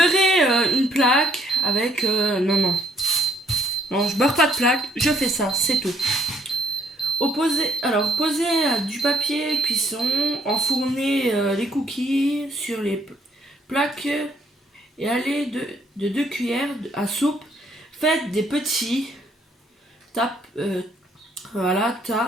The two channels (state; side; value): normal; both; correlation 0.66